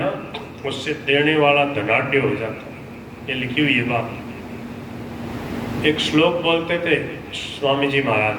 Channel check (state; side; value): identical; both; correlation 1.00